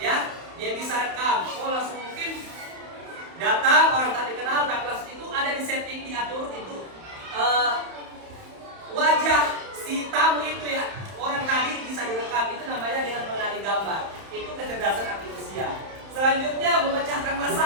Dia bisa rekam. Langsung mungkin datang orang tak dikenal, tapi langsung itu ada di setting, diatur itu wajah si tamu itu ya, orang tadi bisa direkam. Itu namanya dengan mengenali gambar. Itu kecerdasan artifisial. Selanjutnya memecahkan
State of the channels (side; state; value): left; late; 31 ms